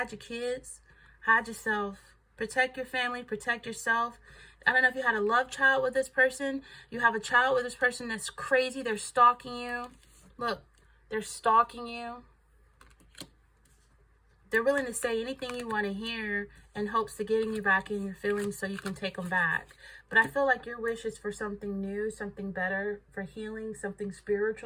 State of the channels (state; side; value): identical; both; correlation 1.00